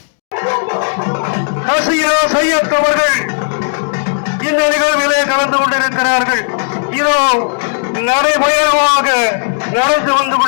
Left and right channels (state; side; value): silent; right; digital silence